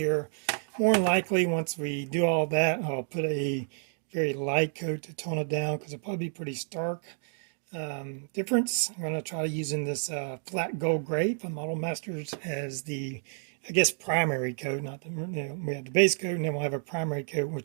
More than likely, once we do all that, I'll put a very light coat to tone it down because it'll probably be pretty stark difference. I'm going to try using this flat gold gray from Model Masters as the, I guess, primary coat. Not the, we have the base coat, and then we'll have a primary coat,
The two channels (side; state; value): left; silent; 57 dB below the other